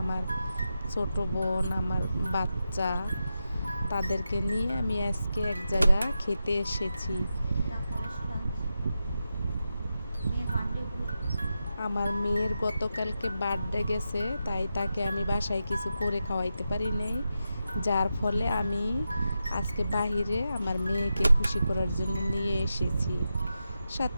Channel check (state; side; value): inverted; both; correlation -0.89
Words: আমার ছোট বোন, আমার বাচ্চা, তাদেরকে নিয়ে আমি আজকে এক জায়গা খেতে এসেছি। আমার মেয়ের গতকালকে বার্থডে গেছে, তাই তাকে আমি বাসায় কিছু করে খাওয়াইতে পারি নাই, যার ফলে আমি আজকে বাহিরে আমার মেয়েকে খুশি করার জন্য নিয়ে এসেছি।